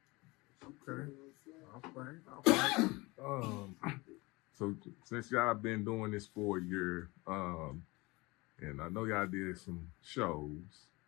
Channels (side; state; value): right; quieter; 23.7 dB